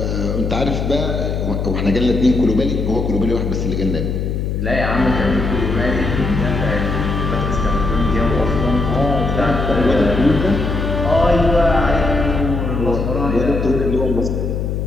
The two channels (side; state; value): left; noise; hum, 1 dB below the sound